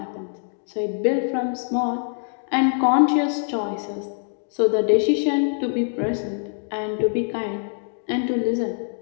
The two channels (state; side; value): silent; right; 63 dB below the other